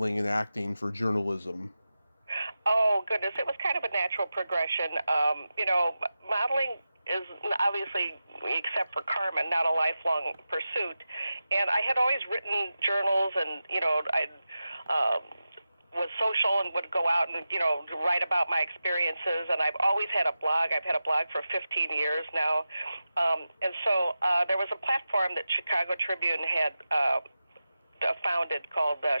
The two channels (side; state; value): both; inverted; correlation -0.93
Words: and acting for journalism? Oh, goodness. It was kind of a natural progression. Modeling is obviously, except for Carmen, not a lifelong pursuit. And I had always written journals, and, I was social and would go out and, write about my experiences. And I've always had a blog. I've had a blog for 15 years now. And so there was a platform that Chicago Tribune had founded called